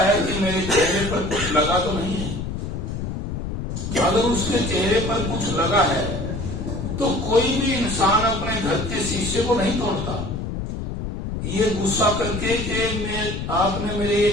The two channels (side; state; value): left; noise; rumble, 4 dB below the sound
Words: कि मेरे चेहरे पर कुछ लगा तो नहीं है। अगर उसके चेहरे पर कुछ लगा है तो कोई भी इंसान अपने घर के शीशे को नहीं तोड़ता, ये गुस्सा करके कि आपने मेरे ये